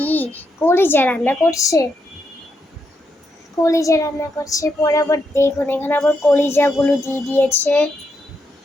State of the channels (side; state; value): both; normal; correlation 0.81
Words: কলিজা রান্না করছে। পরে আবার দেখুন, এখানে আবার কলিজাগুলো দিয়ে দিয়েছে।